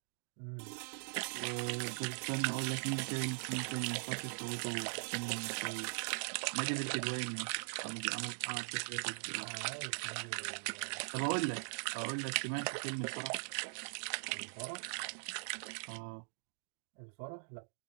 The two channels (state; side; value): silent; left; digital silence